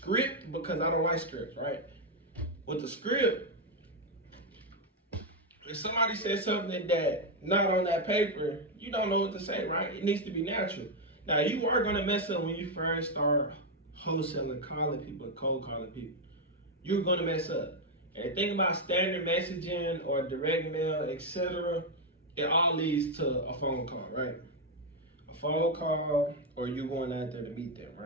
because I don't like scripts, right? With the script, if somebody says something that not on that paper, you don't know what to say, right? It needs to be natural. Now, you are gonna mess up when you first start wholesaling, calling people, cold calling people. You're gonna mess up. And the thing about standard messaging or direct mail, etc., it all leads to a phone call, right? A phone call, or you going out there to meet them,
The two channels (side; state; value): both; normal; correlation 0.03